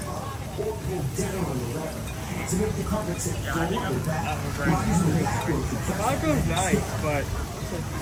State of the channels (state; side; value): identical; both; correlation 1.00